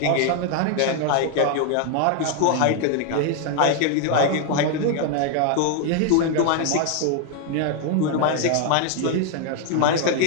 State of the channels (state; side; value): different; both; correlation 0.00